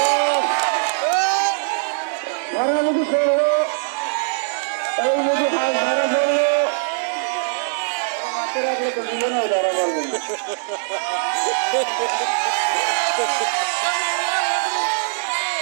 ধরামুখি করলো, এই যদি হাঁস ধরা পড়লো মাঠে রাখলে তো দুজনেও ধরা পড়বে না।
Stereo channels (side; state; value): left; silent; digital silence